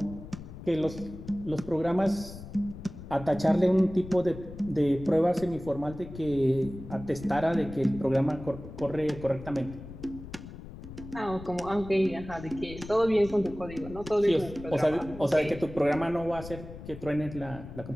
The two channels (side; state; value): left; noise; rumble, 13 dB below the sound